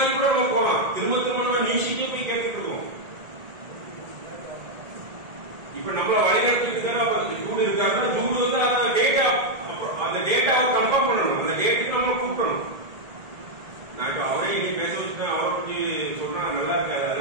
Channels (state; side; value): late; left; 1.9 ms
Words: கூட நம்ம போலாம். திரும்ப திரும்ப நம்ம நீசிக்கே போய் கேட்டுட்டு இருக்கோம். இப்ப நம்மள வழிநடத்துக்கு ஜூடு இருக்காங்கன்னா ஜூடு வந்து அந்த டேட்டாவை கன்ஃபார்ம் பண்ணணும். அந்த டேட்டுக்கு நம்ம கூப்பிடணும். நான் இப்ப அவரே இன்னைக்கு பேச வச்சுட்டேன், அவரை பத்தி சொல்றேன், நல்லா இருக்காது,